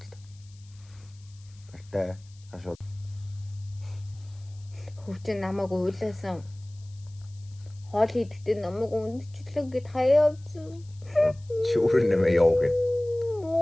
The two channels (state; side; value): noise; left; hiss, 28 dB below the sound